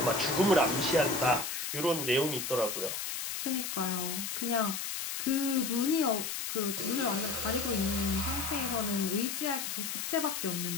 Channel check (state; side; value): noise; left; hiss, 4 dB below the sound